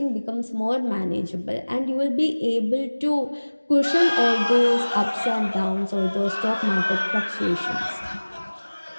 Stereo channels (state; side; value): inverted; both; correlation -1.00